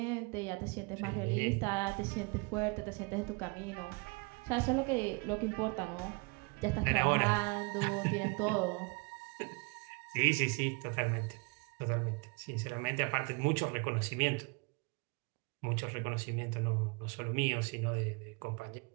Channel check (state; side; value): quieter; left; 30.6 dB